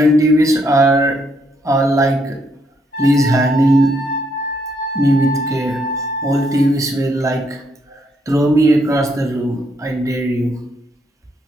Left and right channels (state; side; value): normal; both; correlation 0.74